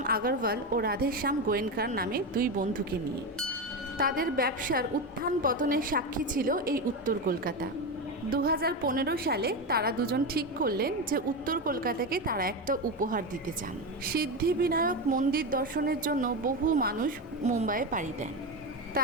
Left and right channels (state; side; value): normal; both; correlation 0.16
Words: আগরওয়াল ও রাধেশ্যাম গোয়েনকার নামে দুই বন্ধুকে নিয়ে। তাদের ব্যবসার উত্থান পতনের সাক্ষী ছিল এই উত্তর কলকাতা। 2015 সালে তারা দুজন ঠিক করলেন যে উত্তর কলকাতাকে তারা একটা উপহার দিতে চান। সিদ্ধিবিনায়ক মন্দির দর্শনের জন্য বহু মানুষ মুম্বাইয়ে পাড়ি দেন,